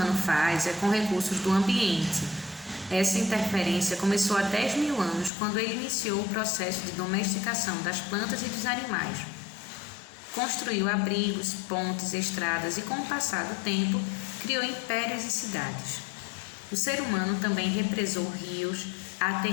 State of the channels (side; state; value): right; drops out; at 5.3 s